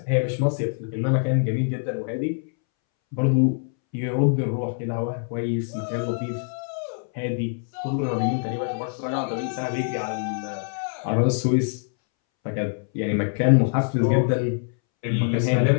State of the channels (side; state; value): right; silent; 62 dB below the other